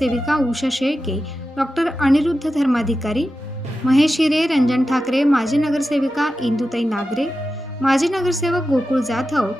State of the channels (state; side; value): normal; both; correlation 0.92